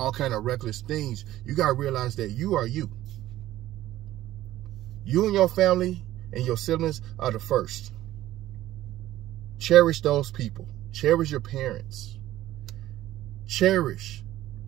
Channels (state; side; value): quieter; left; 14.6 dB